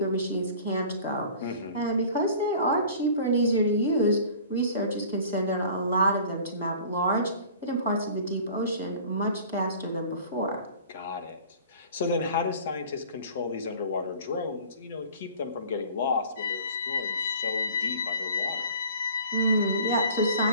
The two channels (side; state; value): both; inverted; correlation -0.45